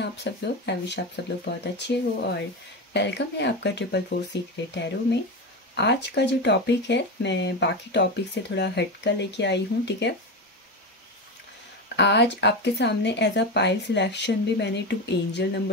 आप सब लोग? आई विश आप सब लोग बहुत अच्छे हो और वेलकम है आपका 444 सीक्रेट टैरो में। आज का जो टॉपिक है मैं बाकी टॉपिक से थोड़ा हटकर लेके आई हूँ, ठीक है। आज आपके सामने एज अ पाइल सिलेक्शन भी मैंने 2 एंजल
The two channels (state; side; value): normal; both; correlation 0.18